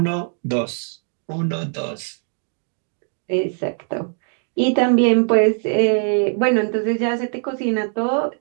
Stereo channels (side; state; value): left; silent; 59 dB below the other